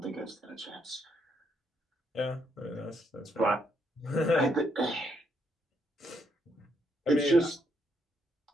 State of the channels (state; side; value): normal; both; correlation 0.75